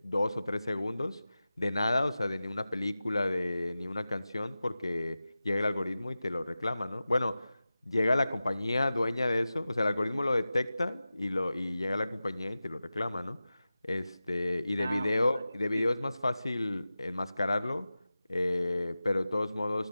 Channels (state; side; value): inverted; both; correlation -0.95